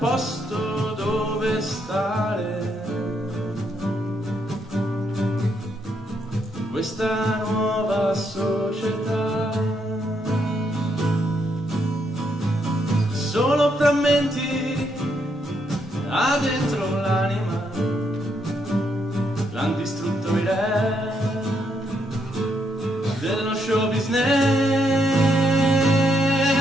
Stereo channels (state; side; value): normal; both; correlation 0.76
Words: dove stare, questa nuova società. Solo frammenti ha dentro l'anima, l'han distrutto i re dello show business.